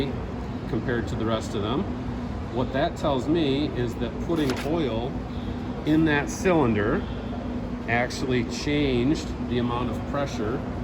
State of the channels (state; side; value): identical; both; correlation 1.00